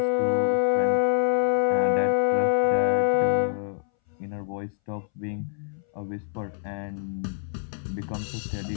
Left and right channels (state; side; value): silent; right; 61 dB below the other